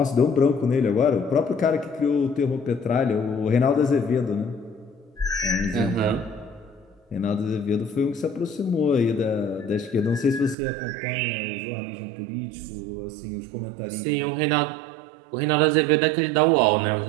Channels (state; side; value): drops out; left; at 10.6 s